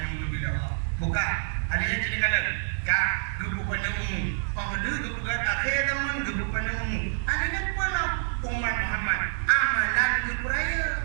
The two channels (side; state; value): left; silent; digital silence